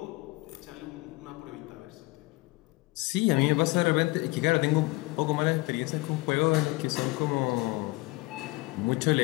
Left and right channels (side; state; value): right; quieter; 23.2 dB